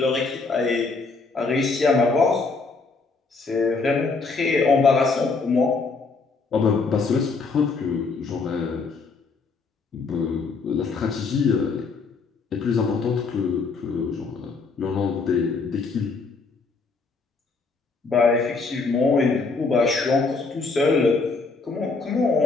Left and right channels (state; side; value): quieter; right; 4.2 dB